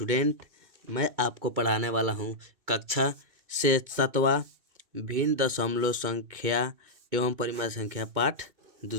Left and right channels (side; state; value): left; late; 2.2 ms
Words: मैं आपको पढ़ाने वाला हूँ कक्षा से 7वां भिन्न दशमलव संख्या एवं परिमाण संख्या पाठ